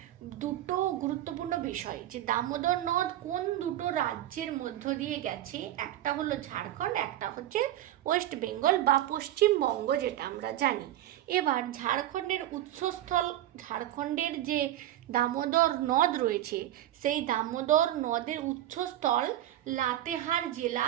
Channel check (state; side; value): quieter; left; 13.3 dB